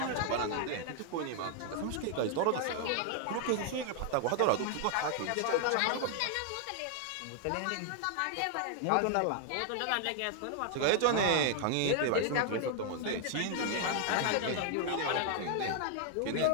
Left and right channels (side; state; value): both; different; correlation 0.00